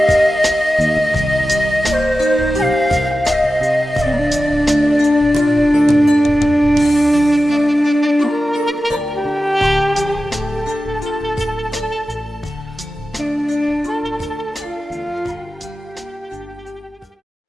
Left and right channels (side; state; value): both; normal; correlation 0.93